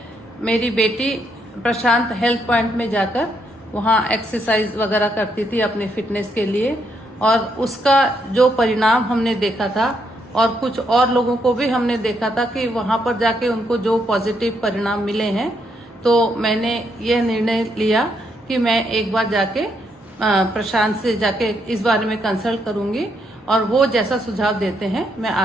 मेरी बेटी प्रशांत हेल्थ पॉइंट में जाकर वहाँ एक्सरसाइज वगैरह करती थी अपने फिटनेस के लिए, और उसका जो परिणाम हमने देखा था और कुछ और लोगों को भी हमने देखा था कि वहाँ पर जाके उनको जो पॉजिटिव परिणाम मिले हैं, तो मैंने यह निर्णय लिया कि मैं एक बार जाके प्रशांत से जाके इस बारे में कंसल्ट करूंगी और वो जैसा सुझाव देते हैं मैं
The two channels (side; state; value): both; normal; correlation 0.76